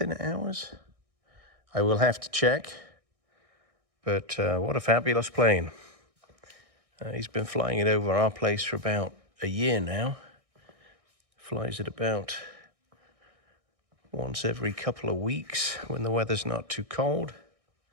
hours. I will have to check. But what a fabulous plane. He's been flying it over our place for about a year now. Flies it about once every couple of weeks when the weather's not too cold.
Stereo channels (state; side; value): late; left; 1.6 ms